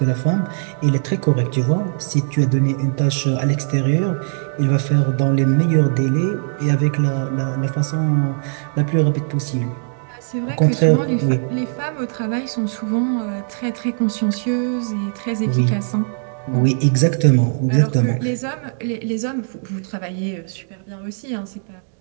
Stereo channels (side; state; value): left; silent; digital silence